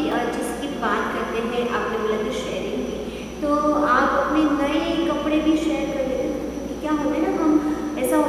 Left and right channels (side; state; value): both; identical; correlation 1.00